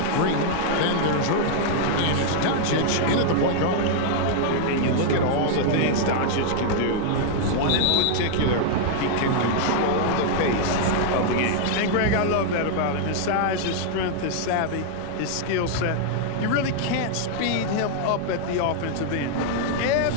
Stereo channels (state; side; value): different; both; correlation 0.00